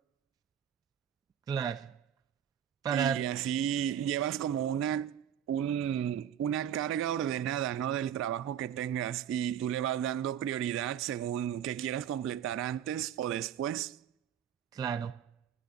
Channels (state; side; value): quieter; left; 9.6 dB